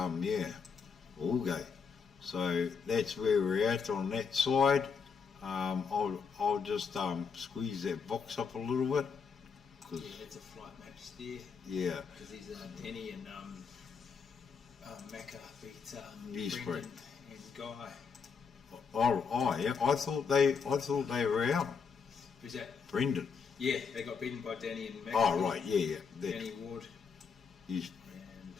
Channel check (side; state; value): right; quieter; 5.8 dB